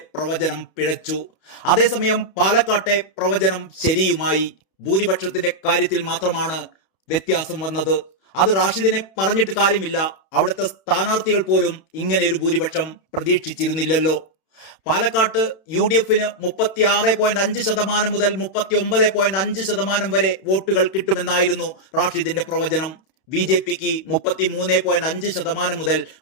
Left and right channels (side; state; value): right; late; 31 ms